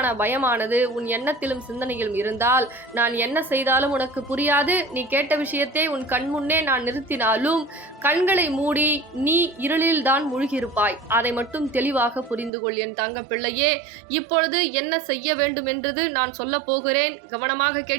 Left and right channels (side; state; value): left; drops out; at 12.5 s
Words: பயமானது உன் எண்ணத்திலும் சிந்தனையிலும் இருந்தால் நான் என்ன செய்தாலும் உனக்கு புரியாது. நீ கேட்ட விஷயத்தை உன் கண் முன்னே நான் நிறுத்தினாலும் கண்களை மூடி நீ இருளில் தான் மூழ்கியிருப்பாய். அதை மட்டும் தெளிவாக புரிந்து கொள் என் தங்க பிள்ளையே. இப்பொழுது என்ன செய்ய வேண்டும் என்றது நான் சொல்ல போகிறேன். கவனமாக